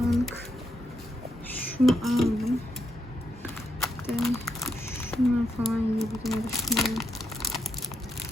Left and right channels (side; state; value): both; normal; correlation 0.81